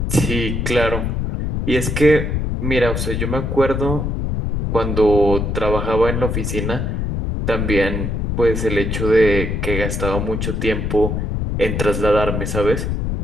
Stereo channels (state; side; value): noise; left; rumble, 1 dB below the sound